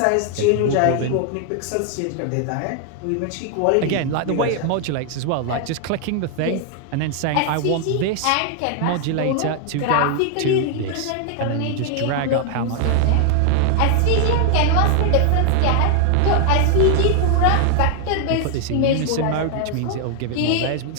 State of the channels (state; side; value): different; both; correlation 0.00